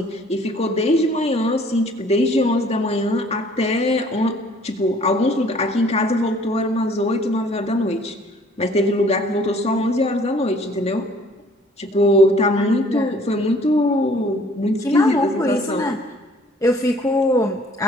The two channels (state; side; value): normal; both; correlation 0.56